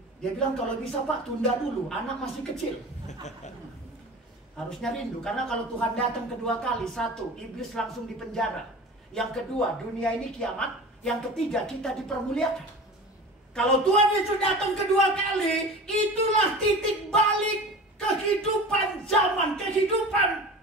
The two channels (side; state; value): both; normal; correlation 0.35